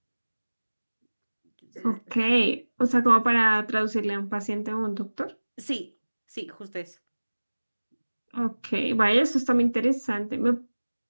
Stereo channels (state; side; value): inverted; both; correlation -1.00